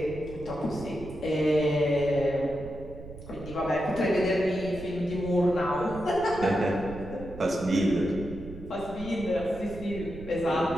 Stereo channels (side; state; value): right; noise; rumble, 14 dB below the sound